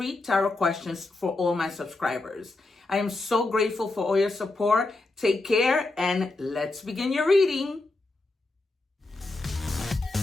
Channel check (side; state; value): right; quieter; 3.1 dB